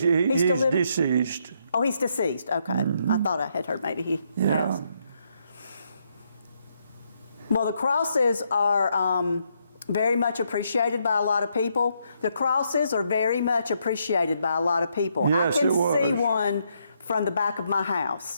living? deceased. Oh, he's deceased. Okay. I thought I had heard maybe he has. Well, the crosses are very much appreciated by a lot of people. The crosses are very much appreciated by a lot of people. Yes, I can it was. see one from the back of my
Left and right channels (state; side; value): inverted; both; correlation -0.76